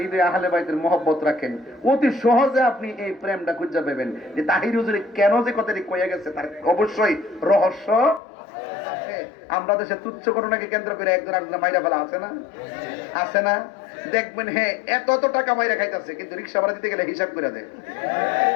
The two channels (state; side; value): drops out; right; at 8.2 s